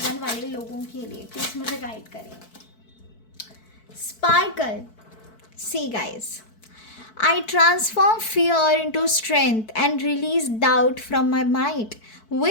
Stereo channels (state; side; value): late; right; 4.6 ms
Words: 1 वाले लोगों के लिए, प्लीज़ मुझे गाइड करें। Sparkle, see guys, I transform fear into strength and release doubt from my mind.